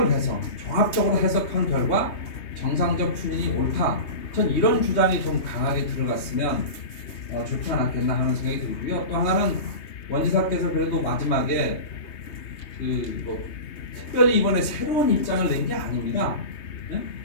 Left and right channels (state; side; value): late; right; 3.2 ms